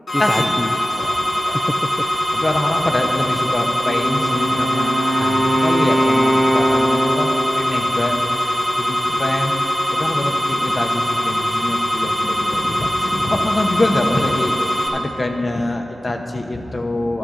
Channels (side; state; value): both; normal; correlation 0.95